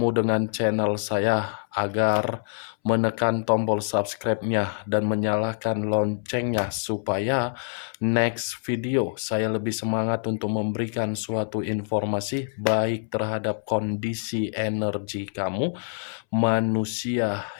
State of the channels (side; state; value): right; silent; 61 dB below the other